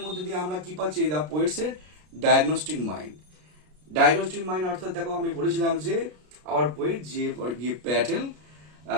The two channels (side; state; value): left; late; 33 ms